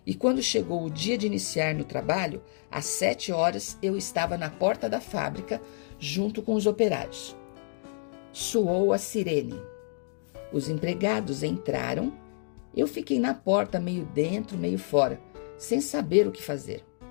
e quando chegou o dia de iniciar no trabalho, às 7 horas eu estava na porta da fábrica junto com os operários. Soou a sirene. Os empregados entraram. Eu fiquei na porta, meio dentro, meio fora, sem saber o que fazer.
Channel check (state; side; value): silent; right; digital silence